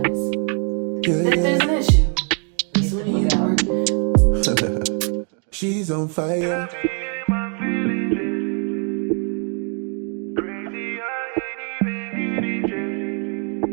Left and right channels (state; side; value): quieter; left; 39.6 dB